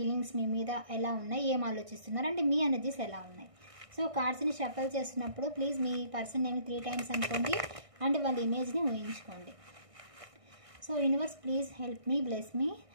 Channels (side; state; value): left; late; 1.6 ms